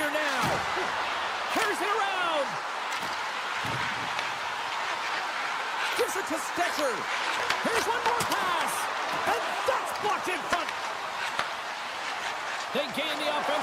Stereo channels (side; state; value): both; identical; correlation 1.00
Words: now. Carries it around. Gives it to Stetcher. Here's one more pass. And that's blocked in front. They gain the